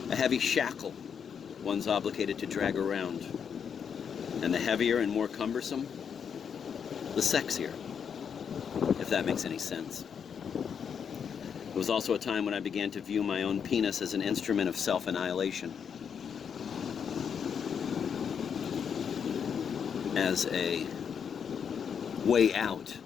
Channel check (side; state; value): right; quieter; 7.2 dB